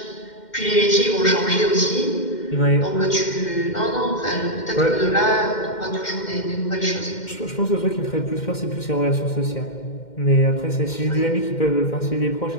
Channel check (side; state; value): right; late; 2.1 ms